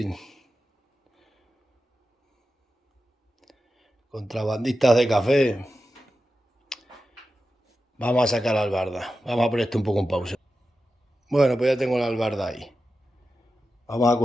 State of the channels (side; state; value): both; normal; correlation 0.92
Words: Contrabandistas de café. Vamos a sacar la albarda. Vamos a poner esto un poco en pausa. Bueno, pues ya tengo la albarda ahí. Vamos a